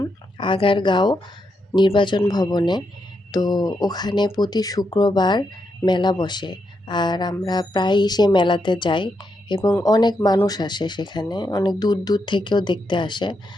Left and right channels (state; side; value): normal; both; correlation 0.82